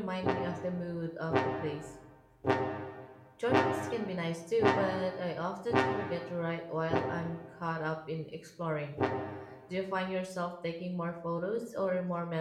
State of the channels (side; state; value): both; identical; correlation 1.00